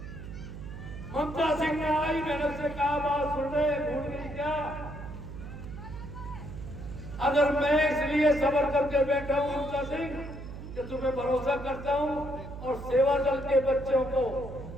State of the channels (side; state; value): right; noise; hum, 11 dB below the sound